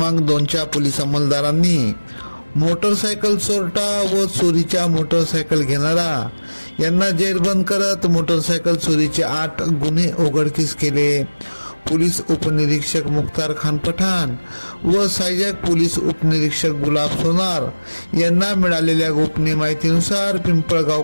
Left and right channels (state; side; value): inverted; both; correlation -1.00